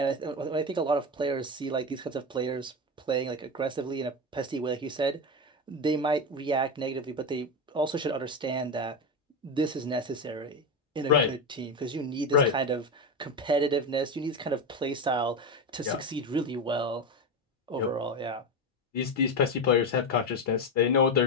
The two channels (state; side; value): normal; both; correlation 0.17